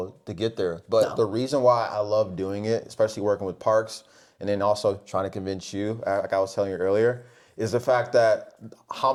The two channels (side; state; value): both; identical; correlation 1.00